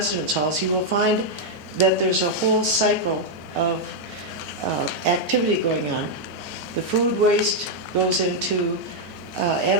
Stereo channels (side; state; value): left; late; 3.8 ms